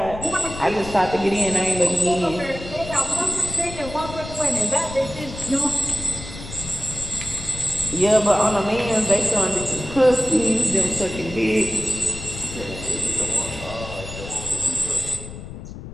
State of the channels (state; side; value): noise; left; rumble, 11 dB below the sound